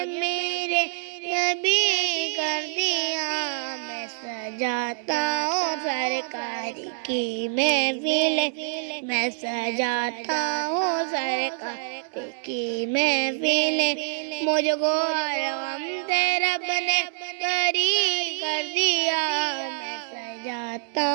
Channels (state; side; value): silent; left; 60 dB below the other